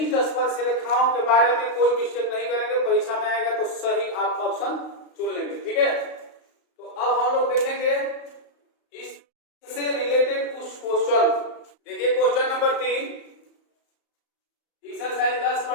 स्पर्श रेखाओं के बारे में कोई मिस्टेक नहीं करेंगे। परीक्षा में आएगा तो सही आप ऑप्शन चुन लेंगे। ठीक है। तो अब हम लोग देखेंगे इससे रिलेटेड कुछ क्वेश्चन। देखिए क्वेश्चन नंबर 3 एक्सरसाइज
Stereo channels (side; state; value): right; late; 35 ms